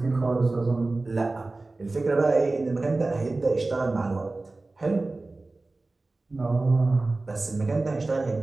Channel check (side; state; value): left; quieter; 3.2 dB